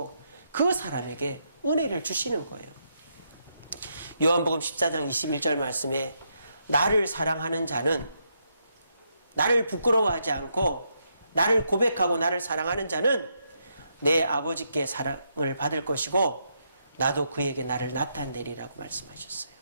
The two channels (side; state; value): both; inverted; correlation -0.79